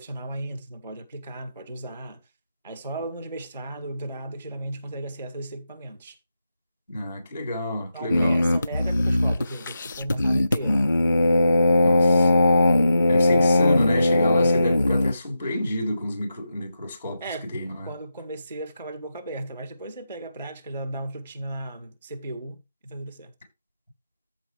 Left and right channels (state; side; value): inverted; both; correlation -0.88